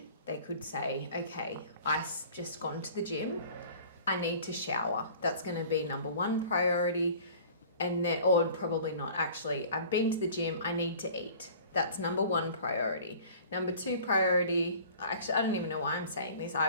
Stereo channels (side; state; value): both; inverted; correlation -0.46